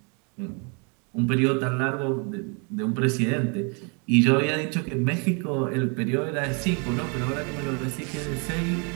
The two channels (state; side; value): quieter; left; 35.4 dB